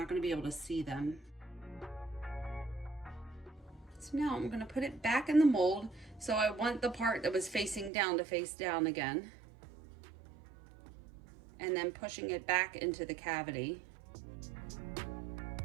going to be able to see them. So now I'm going to put it back in the mold. So I want the part that was facing down to face down again. And then pushing it back into the cavity.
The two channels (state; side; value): drops out; left; at 7.9 s